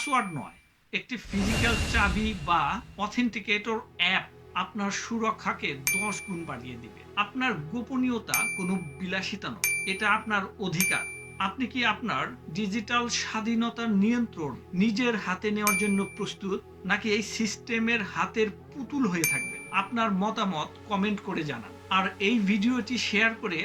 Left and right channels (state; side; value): identical; both; correlation 1.00